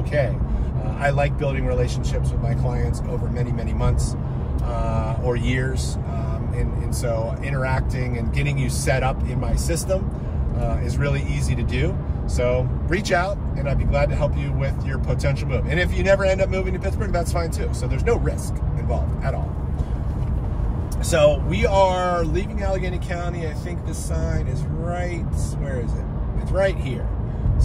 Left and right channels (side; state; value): both; identical; correlation 1.00